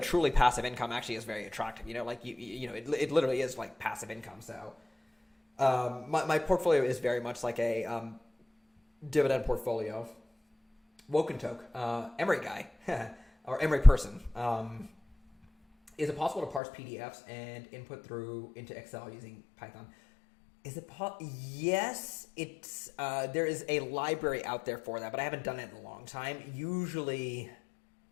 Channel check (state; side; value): drops out; right; at 16.6 s